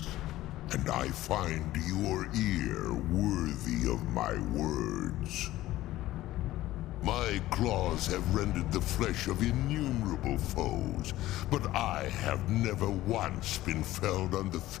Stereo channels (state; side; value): quieter; right; 15.7 dB